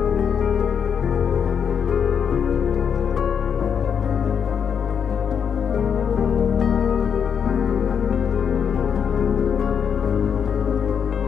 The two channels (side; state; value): right; quieter; 7.4 dB